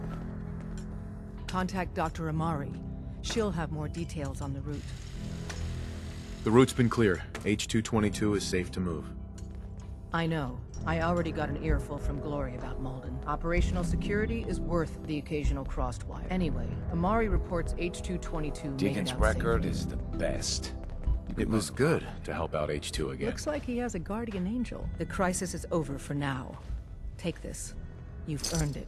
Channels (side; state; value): both; identical; correlation 1.00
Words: Contact Dr. Amari. She'll have more details on the route. The route's been cleared. H-222 is safe to move. I know. I already got an earful from Glory about Malden. Operational security is worth the occasional crossed wire. Anyway, Amari reports H-222 made it Deacon's out record safely. is the best. It was good to help out H2 again. Looks like he has a guardian angel. The crisis is over for now. Take this. You've earned